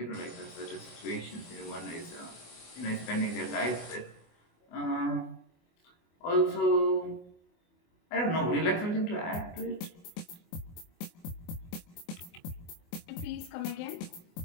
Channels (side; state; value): right; late; 24 ms